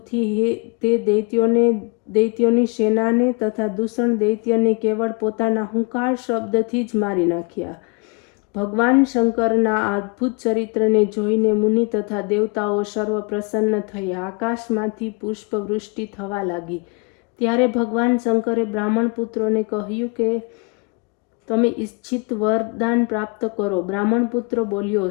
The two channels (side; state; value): right; quieter; 30.9 dB